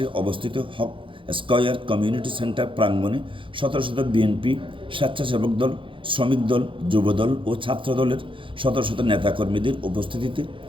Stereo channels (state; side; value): late; left; 0.25 ms